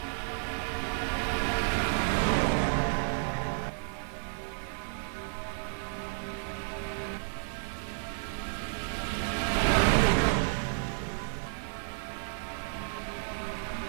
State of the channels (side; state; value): left; silent; 57 dB below the other